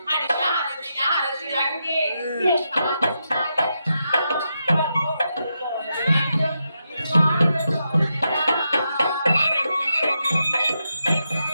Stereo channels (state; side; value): inverted; both; correlation -0.85